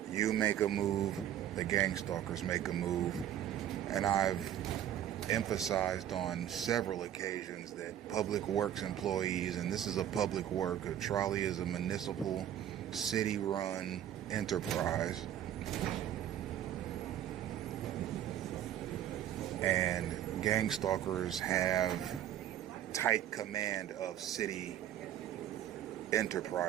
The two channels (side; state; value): left; quieter; 11.0 dB